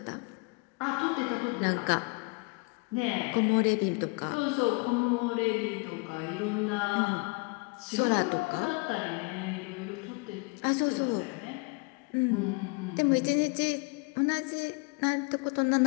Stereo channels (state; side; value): quieter; right; 30.8 dB